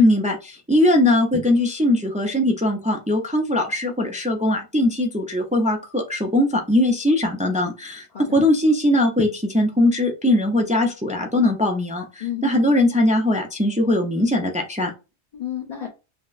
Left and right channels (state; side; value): normal; both; correlation 0.54